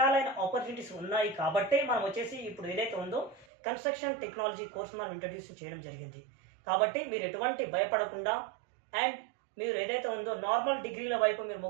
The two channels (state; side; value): drops out; left; at 3.5 s